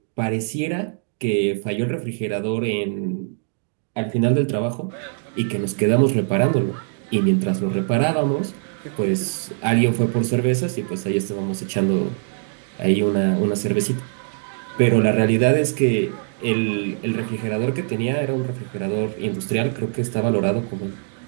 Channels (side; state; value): left; silent; 64 dB below the other